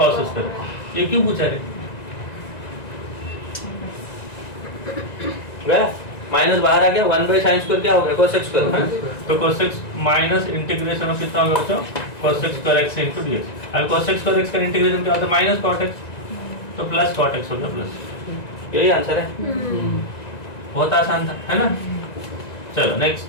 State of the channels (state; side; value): late; right; 1.9 ms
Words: square x, ये क्यों पूछा रे, गया माइनस बाहर आ गया, 1 बाई sin स्क्वायर क्या हो गया cos x स्क्वायर, तो cos x minus integration of कितना हो गया बच्चों, cosec square x into dx. अब cosec square x का इंटीग्रेशन क्या होता है? माइनस cot x, तो प्लस cot x हो गया प्लस। यही आंसर है, बहुत आसान था, है ना? चलो next.